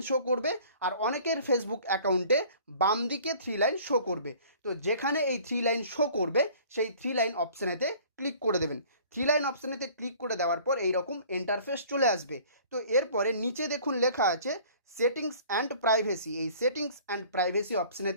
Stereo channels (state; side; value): inverted; both; correlation -0.50